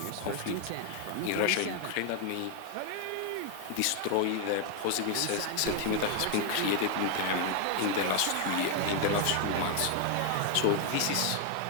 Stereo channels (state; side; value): different; both; correlation 0.00